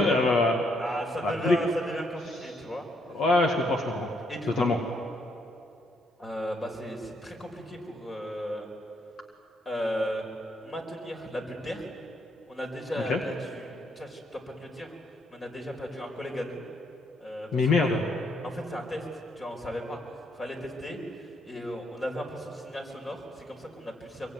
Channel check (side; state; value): both; normal; correlation 0.73